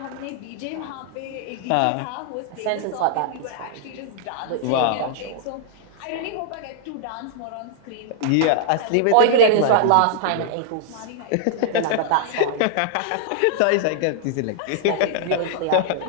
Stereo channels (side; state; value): both; different; correlation -0.01